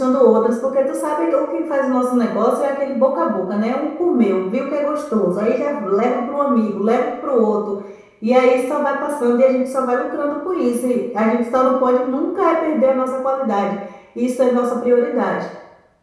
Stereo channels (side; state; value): both; identical; correlation 1.00